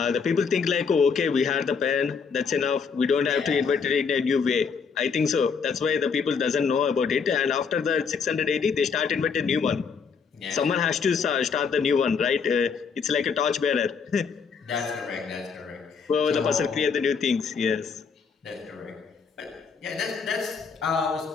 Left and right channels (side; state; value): right; quieter; 5.8 dB